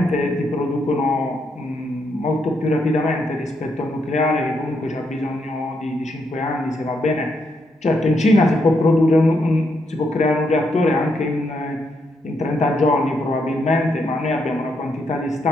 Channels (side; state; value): both; normal; correlation 0.78